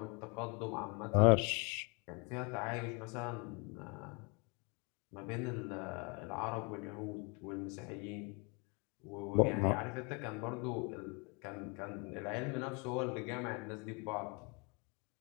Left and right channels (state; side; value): quieter; right; 32.3 dB